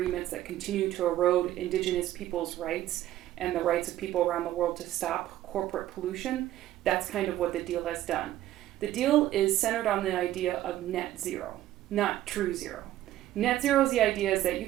that continue to erode indigenous people's rights and the rights of people around the world to stop corporate pollution, that's kind of what the deal has done. The deal is centered on the idea of net zero, not true zero. Net zero is the idea is that you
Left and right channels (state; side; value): quieter; left; 13.7 dB